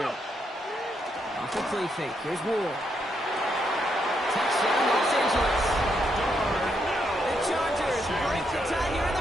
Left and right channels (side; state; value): both; normal; correlation 0.78